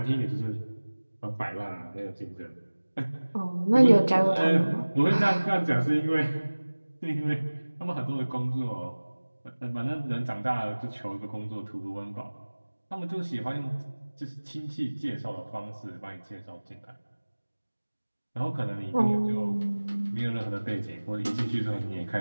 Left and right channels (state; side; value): inverted; both; correlation -1.00